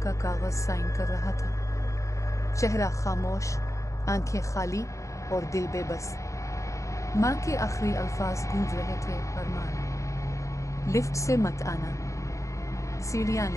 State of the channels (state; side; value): late; right; 0.15 ms